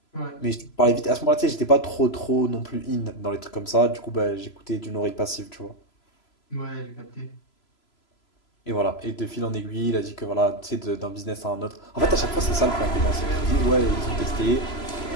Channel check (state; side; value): late; right; 3.0 ms